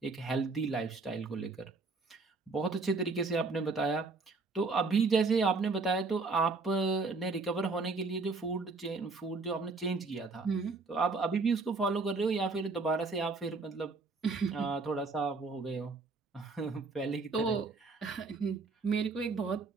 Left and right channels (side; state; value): left; quieter; 4.0 dB